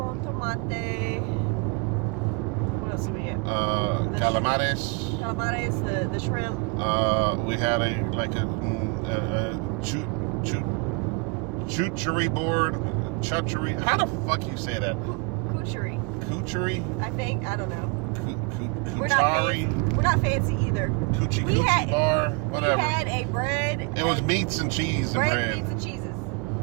tomate. What else did we get? Calamares. Calamares, the shrimp. We had a chuchery board. Chuchery. How the fuck you say that? Couchery? I think. I don't know. We're Couchari. not fancy either. Coochie We had bar, whatever. We had a bread. It was meats and cheese. Bread, meats, and cheeses.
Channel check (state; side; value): quieter; left; 30.2 dB